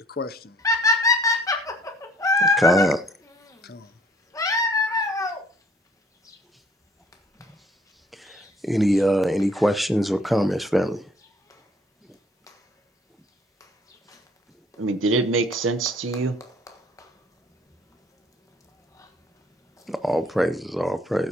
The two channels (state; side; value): normal; both; correlation 0.58